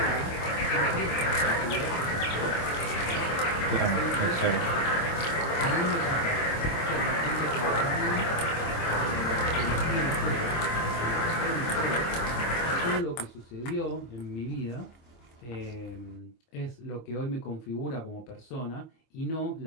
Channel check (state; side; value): late; right; 25 ms